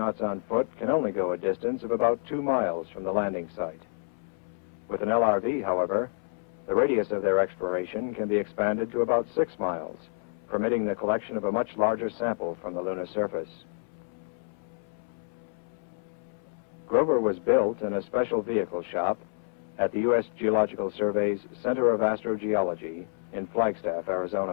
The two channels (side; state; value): right; silent; 59 dB below the other